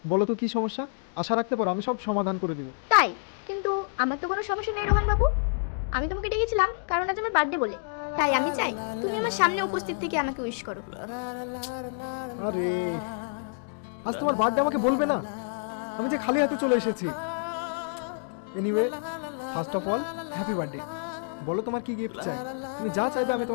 বলো তো কি সমস্যা, আশা রাখতে পারো আমি সব সমাধান করে দিব। তাই? কিন্তু আমার তো কোনো সমস্যা নেই রোহান বাবু। আমি তোমাকে ডেকেছিলাম কারণ আজ আমার বার্থডে বলে। তাই আমি চাই তুমি আমার সামনে উপস্থিত থেকে আমাকে উইশ করো। আরে, আজ তোমার বার্থডে আমাকে বলবে না? আমি যে খালি হাতে চলে এসেছি। Anyway, first of all happy birthday. বলো তোমার কি গিফট চাই? তুমি যা চাইবে আমি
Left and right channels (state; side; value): silent; right; digital silence